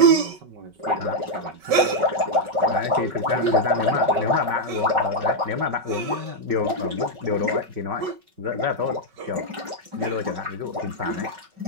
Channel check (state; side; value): late; left; 5.3 ms